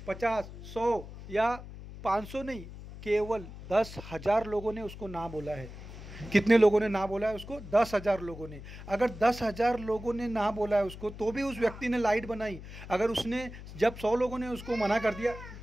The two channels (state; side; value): noise; left; hum, 13 dB below the sound